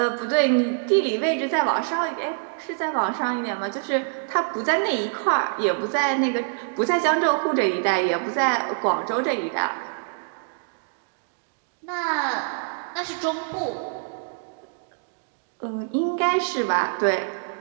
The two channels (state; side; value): silent; left; digital silence